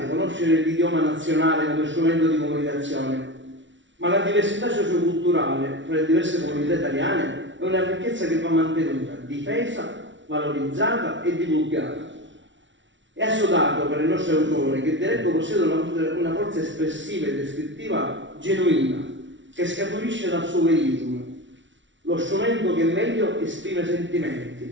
conoscere l'idioma nazionale come strumento di comunicazione, ma la diversità socioculturale tra le diverse comunità italiane è una ricchezza che va mantenuta, difesa, valorizzata e divulgata. È assodato per il nostro autore che il dialetto possiede una forza espressiva e descrittiva genuina, che scaturisce dal suo verismo, lo strumento che meglio esprime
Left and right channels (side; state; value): left; late; 0.55 ms